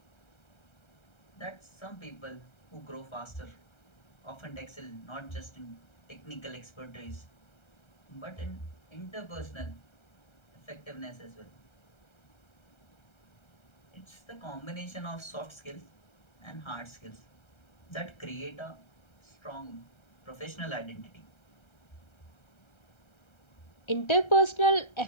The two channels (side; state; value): right; late; 1.3 ms